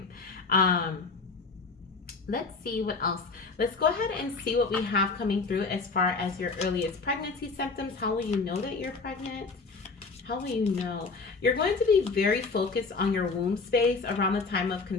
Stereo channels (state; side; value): quieter; right; 4.2 dB